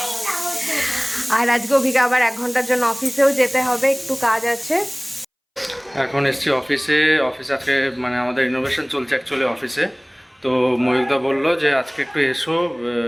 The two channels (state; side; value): identical; both; correlation 1.00